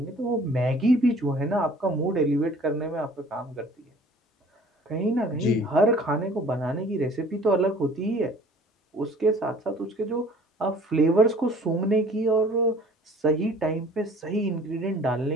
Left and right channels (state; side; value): normal; both; correlation 0.51